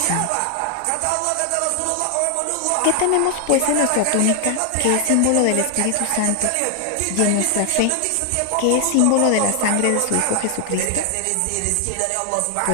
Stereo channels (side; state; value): both; different; correlation 0.00